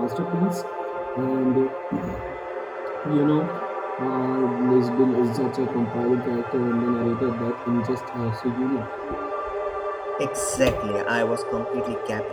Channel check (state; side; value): identical; both; correlation 1.00